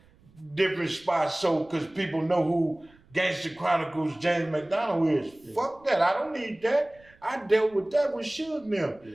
different spots so because people know who Gangster Chronicles James McDonald is. Yeah. Fuck that. I don't need that. I dealt with that with Suge now. Yeah.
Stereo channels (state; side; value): noise; right; rumble, 29 dB below the sound